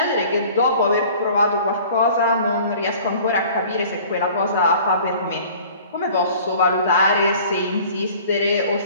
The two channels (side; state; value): both; inverted; correlation -0.48